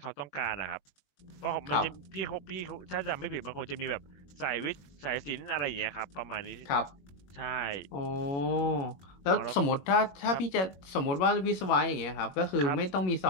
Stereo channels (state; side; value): late; right; 21 ms